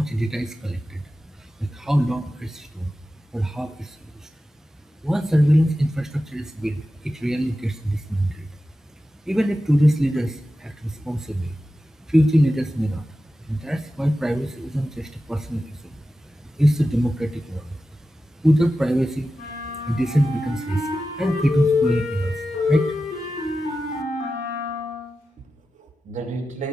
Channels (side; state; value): both; normal; correlation 0.93